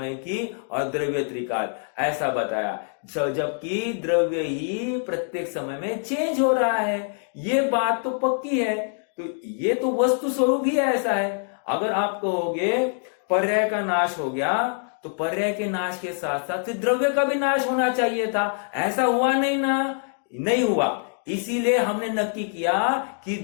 की और द्रव्य त्रिकाल ऐसा बताया, जबकि द्रव्य ही प्रत्येक समय में चेंज हो रहा है। ये बात तो पक्की है, तो ये तो वस्तु स्वरूप ही ऐसा है। अगर आप कहोगे पर्याय का नाश हो गया, तो पर्याय के नाश के साथ साथ द्रव्य का भी नाश होना चाहिए था, ऐसा हुआ नहीं ना, नहीं हुआ। इसीलिए हमने नक्की किया कि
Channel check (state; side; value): silent; right; 62 dB below the other